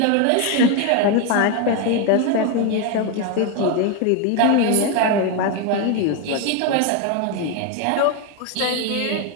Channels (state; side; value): different; both; correlation 0.02